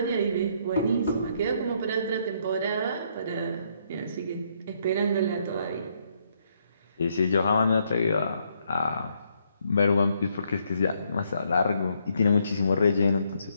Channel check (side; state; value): both; inverted; correlation -0.72